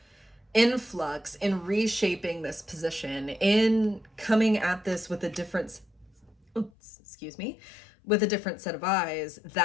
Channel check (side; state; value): right; drops out; at 6.7 s